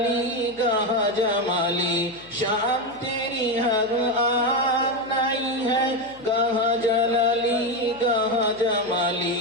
گاہ جمالی. شان تیری ہر آن نہیں ہے، گاہ جلالی گاہ جمالی.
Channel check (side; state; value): left; noise; hum, 27 dB below the sound